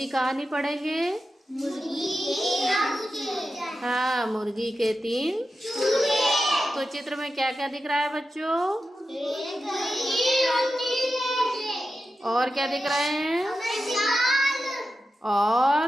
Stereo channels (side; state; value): both; normal; correlation 0.90